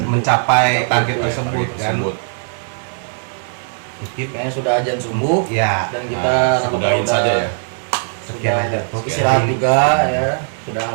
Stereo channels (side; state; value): left; silent; 67 dB below the other